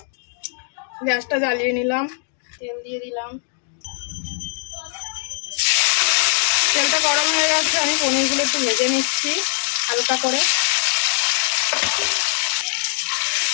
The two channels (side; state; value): right; silent; 57 dB below the other